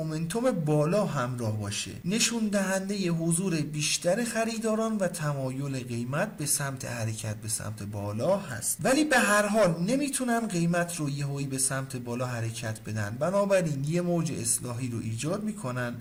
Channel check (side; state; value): both; identical; correlation 1.00